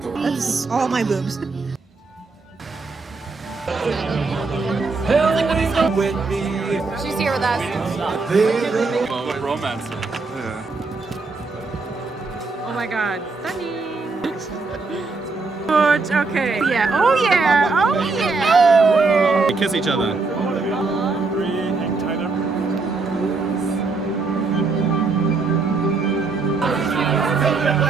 that's all my boobs. She's here with us. Romance. Oh my god, stunning. Good, okay. Yeah, oh yeah, oh yeah. They kiss each other.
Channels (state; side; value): quieter; left; 4.0 dB